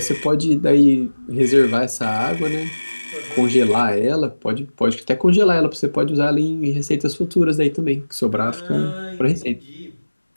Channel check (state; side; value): inverted; both; correlation -1.00